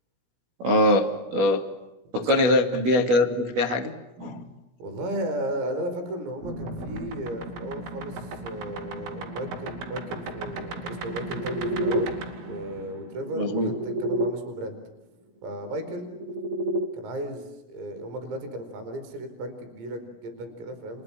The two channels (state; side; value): late; left; 17 ms